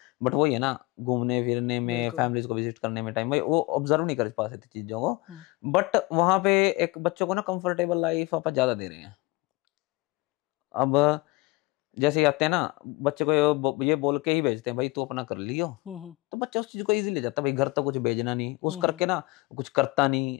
बट वही है ना, घूमने फिरने में, फैमिलीज को विजिट करने में टाइम भाई वो ऑब्जर्व नहीं कर पाते थे चीजों को, बट वहां पे एक बच्चों को ना कंफर्टेबल लाइफ आप ज्यादा दे रहे हैं। अब जैसे आते हैं ना बच्चे को ये बोल के ही भेजते हैं भाई तू अपना कर लियो, तो बच्चा उस चीज को इजीली जाता भाई, घर तो कुछ भेजना नहीं, उस करके ना कुछ करता नहीं,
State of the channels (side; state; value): right; quieter; 22.4 dB